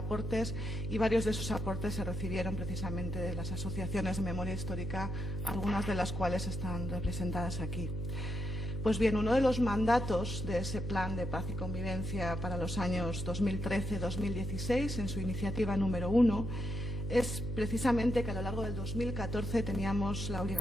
y varios de esos aportes se recibieron precisamente de las asociaciones de memoria histórica, algunas de las cuales están representadas aquí. Pues bien, uno de los mandatos de ese Plan de Paz y Convivencia para los años 2013-2016, en su iniciativa número 1, es precisamente que a lo largo del 2014 teníamos la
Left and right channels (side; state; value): left; noise; hum, 6 dB below the sound